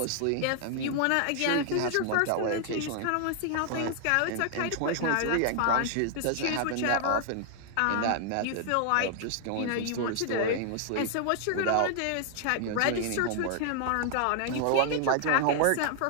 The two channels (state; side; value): different; both; correlation 0.00